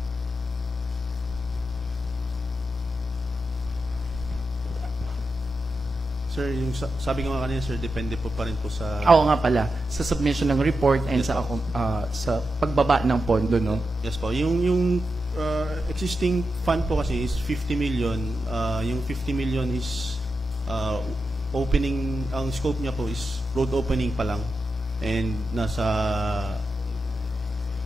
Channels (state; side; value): normal; both; correlation 0.88